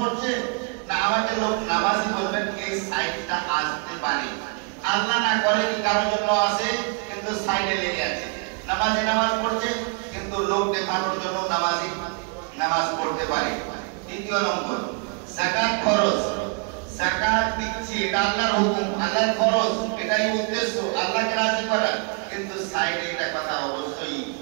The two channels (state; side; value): quieter; left; 38.8 dB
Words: না, আমাদের লোক নামাজি বলবেন এই সাইডটা আসতে পারে, আল্লাহ না করে কি কারোর জন্য আসে কিন্তু সাইডে লেগে আছে। নামাজি নামাজ পড়ছে কিন্তু লোক দেখানোর জন্য নামাজি নামাজ পড়তে পারে। দ্বিতীয় নম্বর যাকাত ফরজ, যাকাত দিচ্ছি এটা আল্লাহর হুকুম, আল্লাহর ফরজ, এটাই উদ্দেশ্য আল্লাহকে রাজি করা। কিন্তু সাইডে এটা কথা অবশ্যই